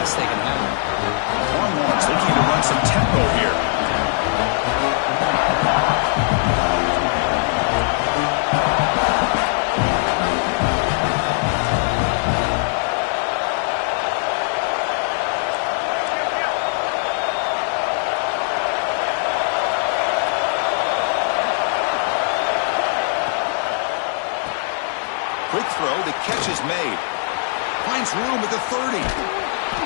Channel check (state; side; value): silent; right; 56 dB below the other